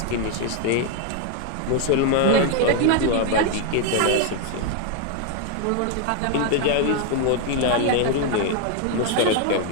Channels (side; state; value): both; different; correlation 0.00